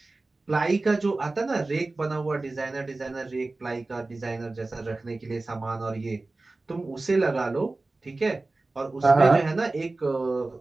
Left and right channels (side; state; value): left; quieter; 3.2 dB